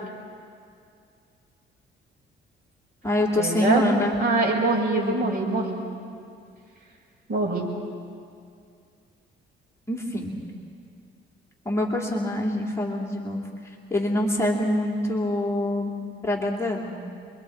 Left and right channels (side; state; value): both; normal; correlation 0.53